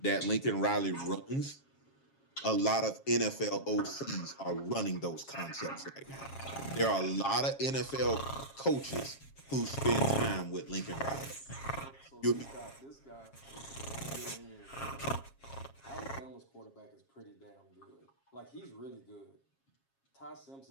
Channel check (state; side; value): late; right; 7.4 ms